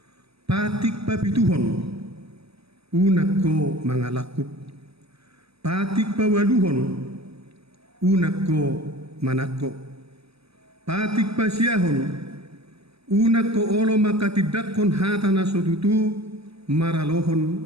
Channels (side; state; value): left; late; 0.78 ms